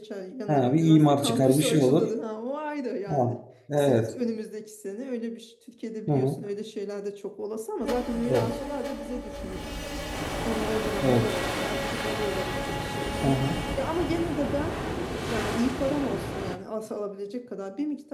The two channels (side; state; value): both; identical; correlation 1.00